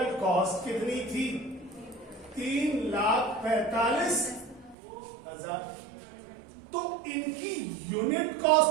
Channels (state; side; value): drops out; left; at 4.8 s